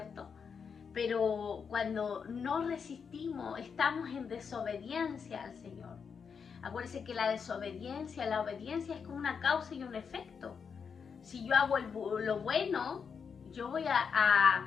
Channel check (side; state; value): right; quieter; 6.3 dB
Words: Pero cuando no resistimos, estamos en desobediencia al Señor. Acuérdense que la obediencia es como una causa y un efecto. Si yo hago lo bueno,